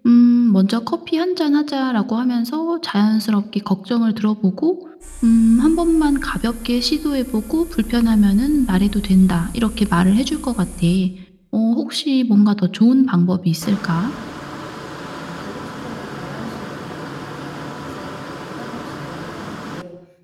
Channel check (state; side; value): identical; both; correlation 1.00